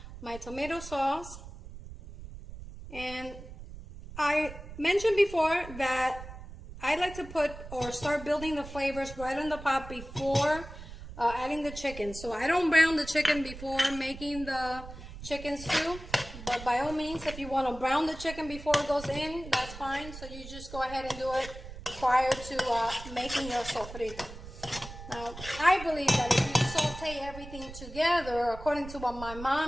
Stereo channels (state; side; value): noise; right; rumble, 13 dB below the sound